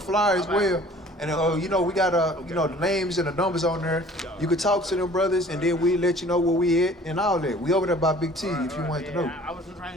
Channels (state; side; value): normal; both; correlation 0.50